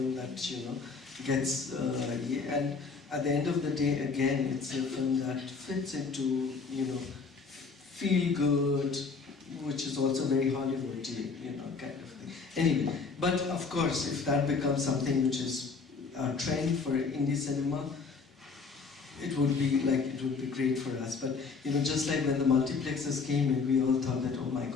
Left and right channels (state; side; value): quieter; right; 4.8 dB